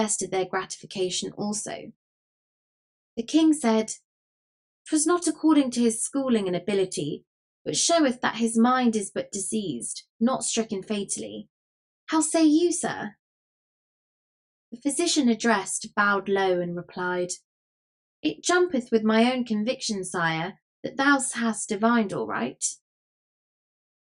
their gratification also. The king said, 'Twas not according to his schooling and ability, but showeth that his mind is but diseased, not stricken fatally. How say you, sir? The physician addressed bowed low and replied, It jumpeth with my own conviction, sire, that thou hast divined all right.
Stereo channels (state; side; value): identical; both; correlation 1.00